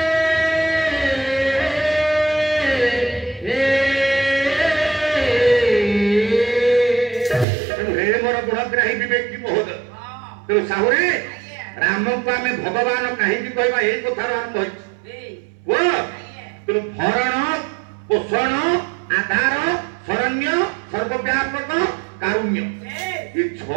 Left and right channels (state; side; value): drops out; left; at 7.5 s